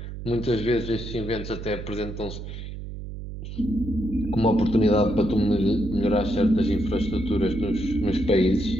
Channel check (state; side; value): noise; right; hum, 9 dB below the sound